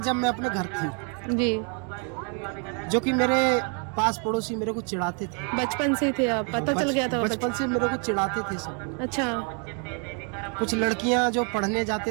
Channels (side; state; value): left; quieter; 38.5 dB